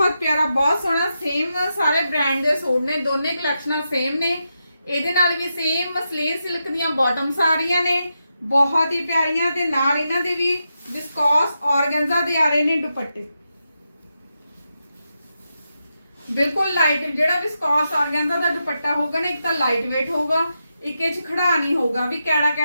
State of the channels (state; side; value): inverted; both; correlation -0.86